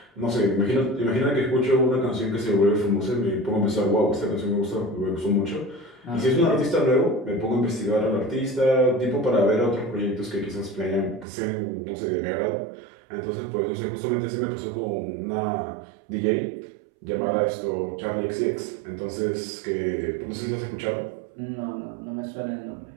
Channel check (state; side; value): drops out; left; at 11.2 s